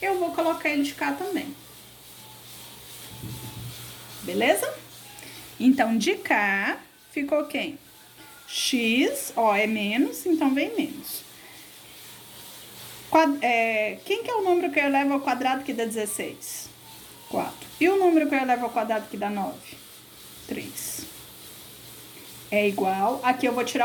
eu vou colocar ele de cá também. Beleza? Então, de cá, ficou quem? X, ó, é menos, então vem menos. Quem que é o número que eu elevo ao quadrado que dá 16? 4. E o número que eu elevo ao quadrado que dá 9? 3. É igual, aqui eu vou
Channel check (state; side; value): identical; both; correlation 1.00